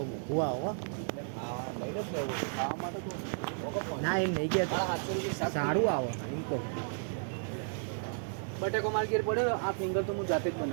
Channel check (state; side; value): silent; left; digital silence